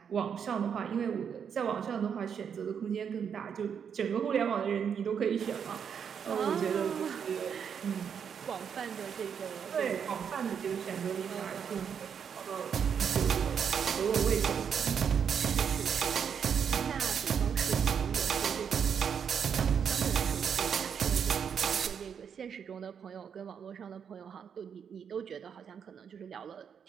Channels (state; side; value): quieter; left; 7.4 dB